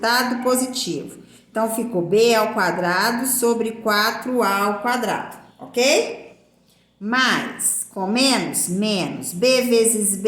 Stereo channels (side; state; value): both; identical; correlation 1.00